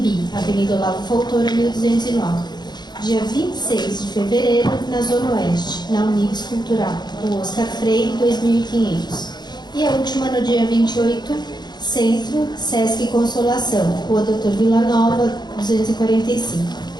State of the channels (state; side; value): late; right; 0.21 ms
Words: Avenida Olavo Fontoura, 1209. Dia 26 de fevereiro, na Zona Oeste, na Unibis Cultural, Rua Oscar Freire, 2500. E a última no dia 28, Centro, Sesc Consolação, Rua Doutor Vila Nova, 245.